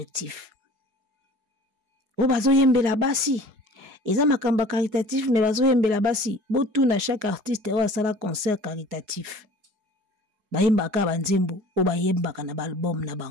O bazo yembela basi. Eza makamba caritatif mais bazo yembela basi. Botu na chaque artiste o asala concert caritatif. Bayembaka banzembo o bayembaka na album na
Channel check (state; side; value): late; left; 4.7 ms